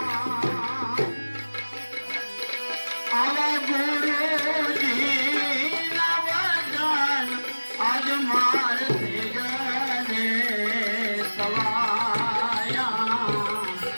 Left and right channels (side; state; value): both; inverted; correlation -1.00